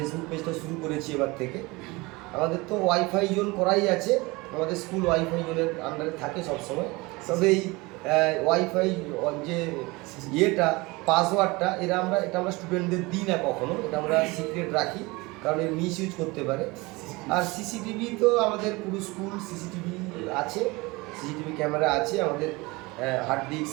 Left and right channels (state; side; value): quieter; left; 23.7 dB